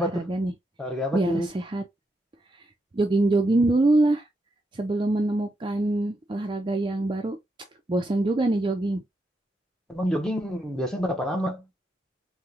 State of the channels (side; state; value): both; normal; correlation 0.82